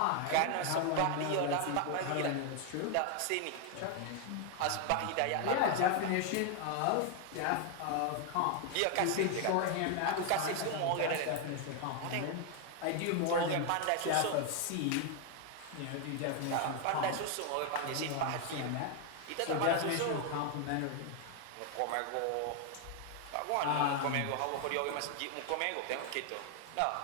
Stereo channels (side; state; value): both; different; correlation 0.00